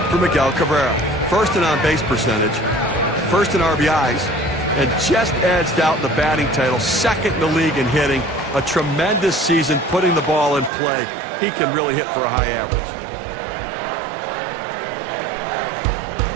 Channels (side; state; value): left; drops out; at 10.7 s